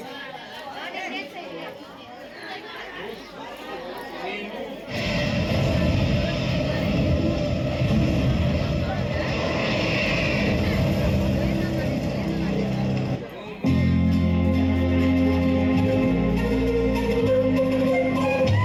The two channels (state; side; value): identical; both; correlation 1.00